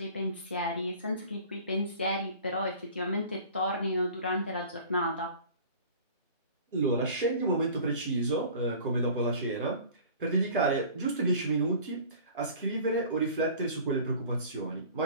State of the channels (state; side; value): inverted; both; correlation -0.44